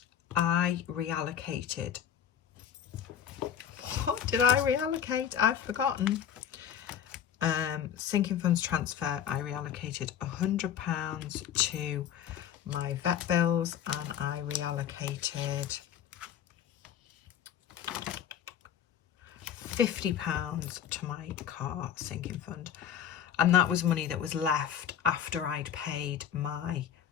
I reallocated. What did I reallocate? I've forgotten. Sinking funds transfer, I reallocated £100 to my vet bills, and I reallocated £50 to my car sinking fund. And that was money that was left after I'd paid my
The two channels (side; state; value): right; quieter; 9.3 dB